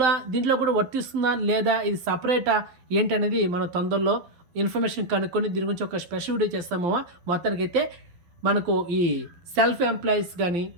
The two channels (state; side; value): late; left; 12 ms